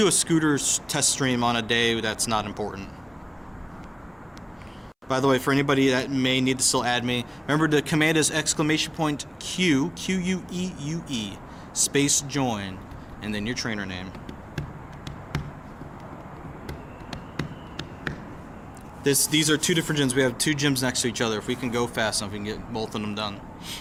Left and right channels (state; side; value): identical; both; correlation 1.00